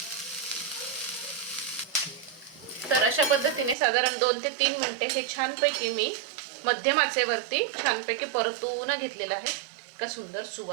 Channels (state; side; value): drops out; left; at 3.8 s